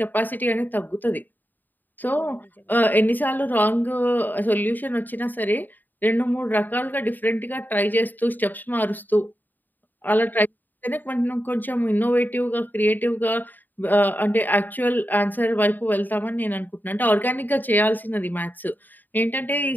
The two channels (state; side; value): late; right; 0.088 ms